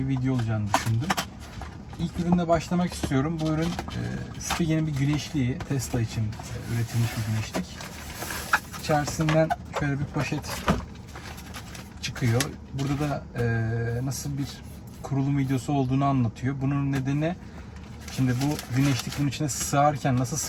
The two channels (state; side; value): identical; both; correlation 1.00